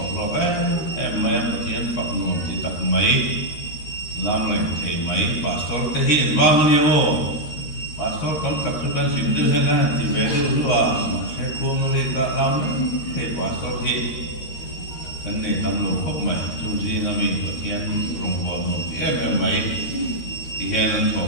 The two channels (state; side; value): late; right; 13 ms